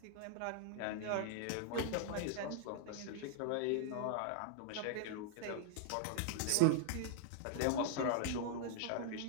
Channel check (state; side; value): different; both; correlation -0.01